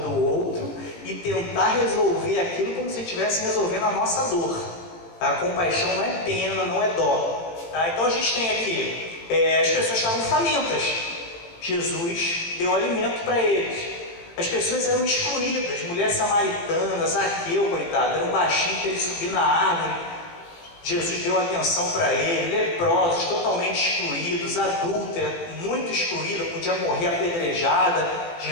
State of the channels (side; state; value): right; late; 18 ms